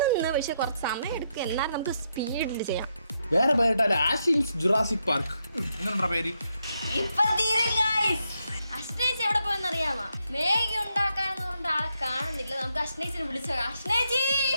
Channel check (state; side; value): inverted; both; correlation -0.80